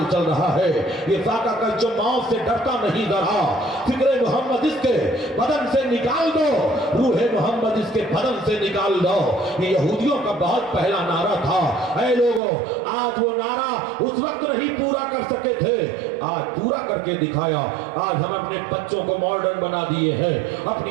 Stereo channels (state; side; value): drops out; left; at 12.4 s